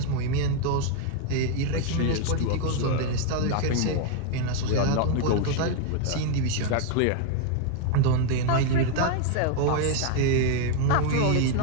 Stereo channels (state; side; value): different; both; correlation 0.00